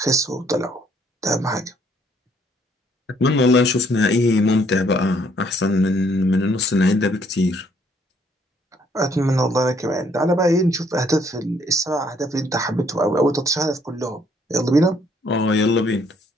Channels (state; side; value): normal; both; correlation 0.66